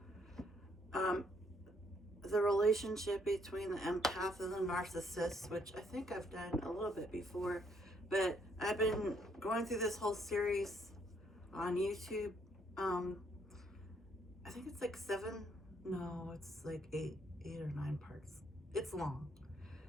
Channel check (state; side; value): normal; both; correlation 0.69